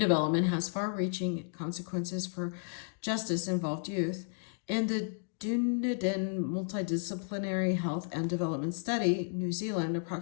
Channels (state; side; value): silent; right; digital silence